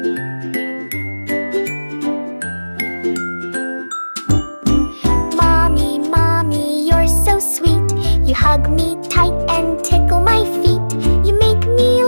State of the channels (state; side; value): inverted; both; correlation -1.00